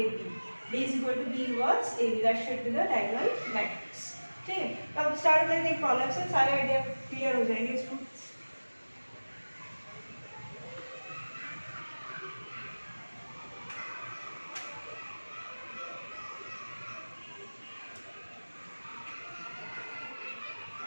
D is equal to B inverse AB, that should be the diagonal matrix, ठीक है। तो अब स्टार्ट करते हैं प्रॉब्लम से, सारे आइडिया क्लियर हो जाएंगे इसको।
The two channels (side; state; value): both; inverted; correlation -1.00